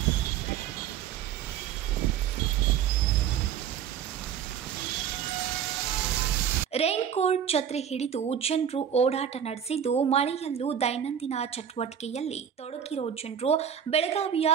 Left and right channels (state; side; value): quieter; left; 8.7 dB